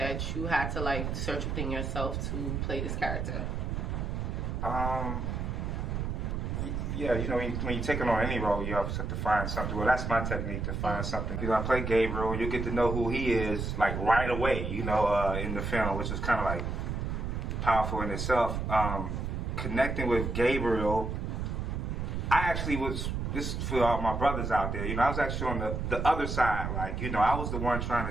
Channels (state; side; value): noise; right; rumble, 2 dB below the sound